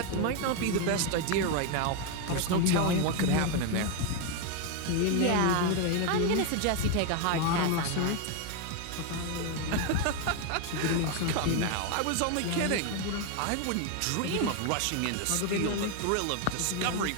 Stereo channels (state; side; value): different; both; correlation 0.01